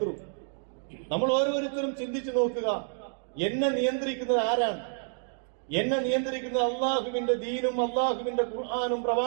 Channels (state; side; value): silent; left; digital silence